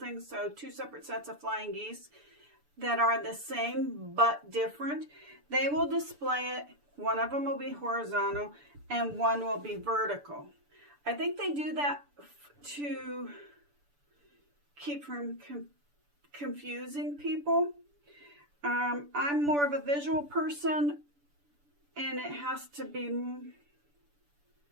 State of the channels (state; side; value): late; left; 6.9 ms